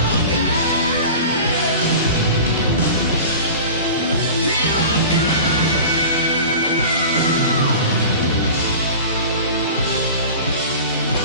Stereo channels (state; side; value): inverted; both; correlation -0.36